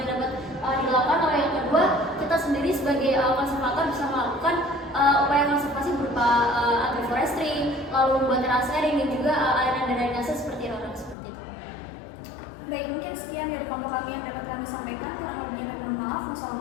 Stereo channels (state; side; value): drops out; right; at 11.2 s